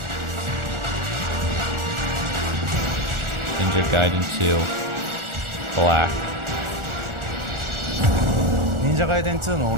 Ninja Gaiden 2. Black. 忍者ガイデン2のオ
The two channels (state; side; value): late; left; 1.4 ms